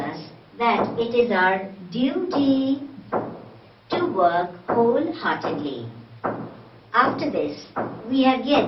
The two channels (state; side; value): identical; both; correlation 1.00